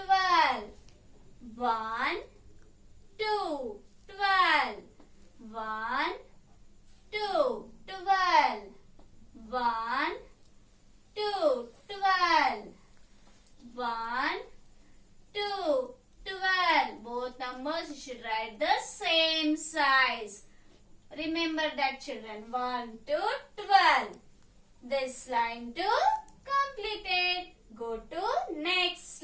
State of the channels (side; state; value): both; identical; correlation 1.00